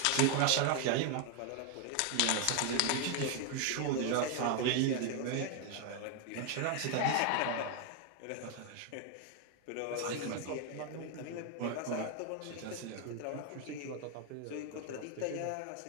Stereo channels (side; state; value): both; different; correlation 0.00